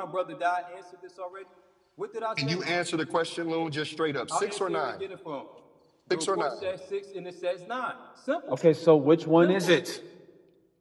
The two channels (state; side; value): identical; both; correlation 1.00